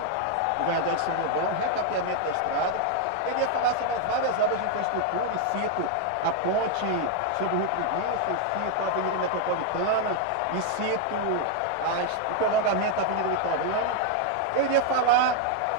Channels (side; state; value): both; different; correlation 0.00